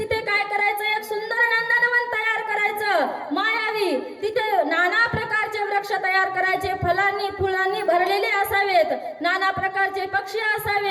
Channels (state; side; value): identical; both; correlation 1.00